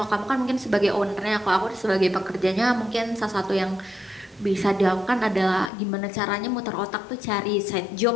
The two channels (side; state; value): right; drops out; at 5.7 s